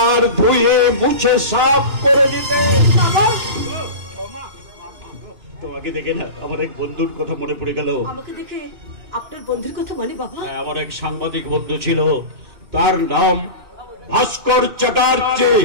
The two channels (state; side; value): late; left; 2.9 ms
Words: ধুয়ে মুছে সাফ করে দিতে। বাবা, তোমাকে দেখে না আমার এক বন্ধুর কথা মনে পড়ে গেল। আমাকে দেখে আপনার বন্ধুর কথা মানে বাবা? আমার এক সাংবাদিক বন্ধু ছিল, তার নাম ভাস্কর চ্যাটার্জি।